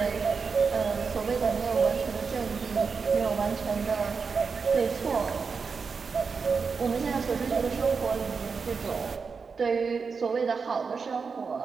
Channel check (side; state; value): left; quieter; 5.3 dB